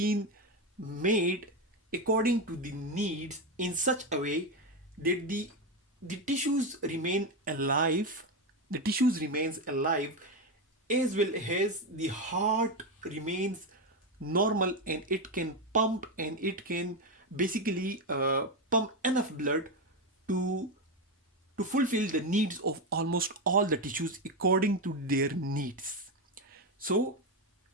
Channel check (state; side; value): normal; both; correlation 0.11